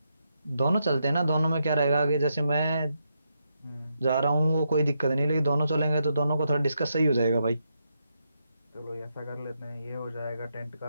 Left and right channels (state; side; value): inverted; both; correlation -0.82